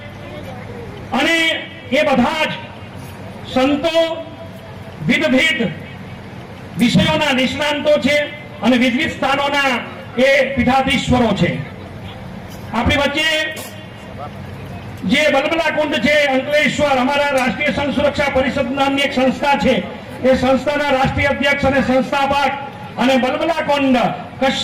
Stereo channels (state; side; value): identical; both; correlation 1.00